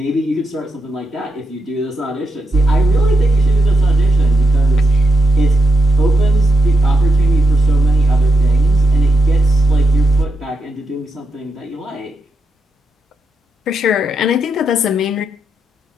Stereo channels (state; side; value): normal; both; correlation 0.82